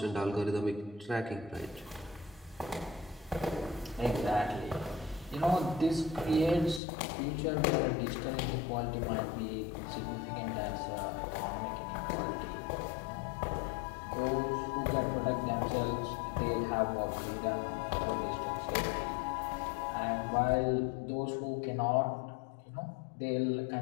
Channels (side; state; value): right; drops out; at 6.8 s